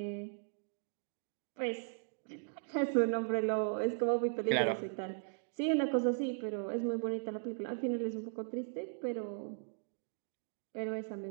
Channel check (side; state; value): left; silent; digital silence